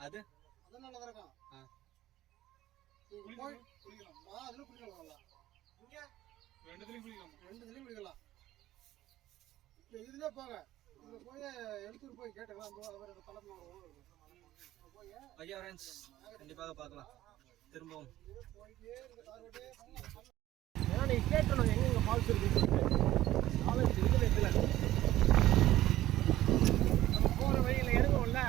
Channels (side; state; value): left; quieter; 14.6 dB